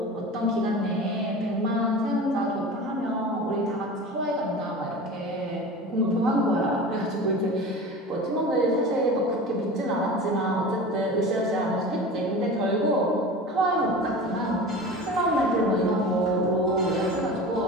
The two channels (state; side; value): normal; both; correlation 0.34